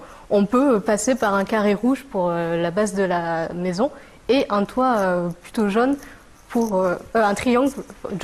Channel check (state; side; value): identical; both; correlation 1.00